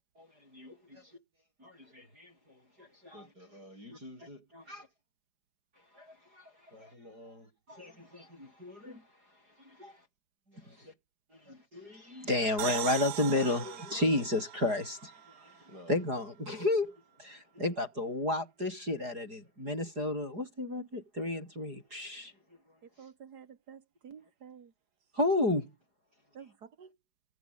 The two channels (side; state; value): left; late; 4.9 ms